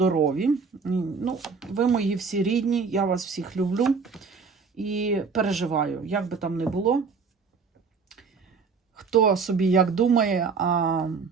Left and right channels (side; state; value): left; quieter; 5.2 dB